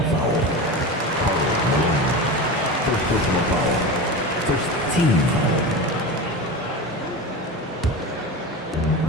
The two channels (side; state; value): both; normal; correlation 0.26